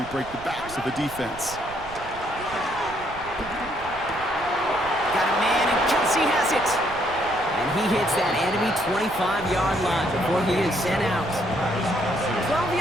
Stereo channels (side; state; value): right; noise; rumble, 16 dB below the sound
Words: break the backs of the defense. Got a man, and Kelsey has it. And he hits that enemy 25-yard line before he is sent out. 12